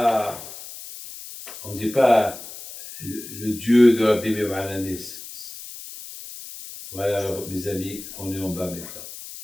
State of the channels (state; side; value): noise; left; hiss, 13 dB below the sound